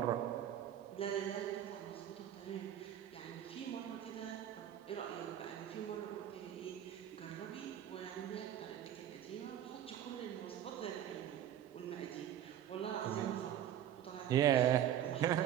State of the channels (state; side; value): quieter; left; 10.7 dB